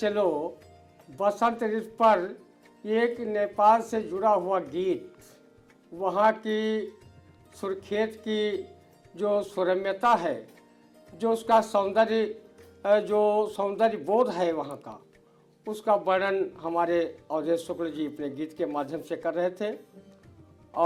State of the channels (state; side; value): identical; both; correlation 1.00